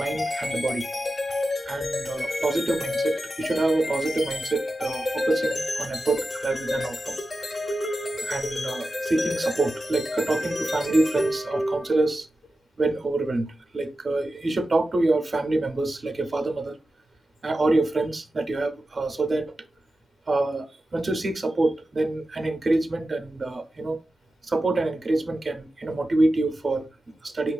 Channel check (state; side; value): normal; both; correlation 0.92